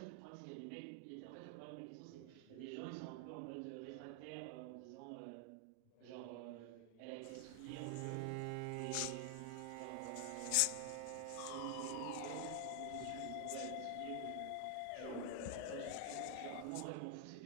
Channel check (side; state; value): both; different; correlation 0.00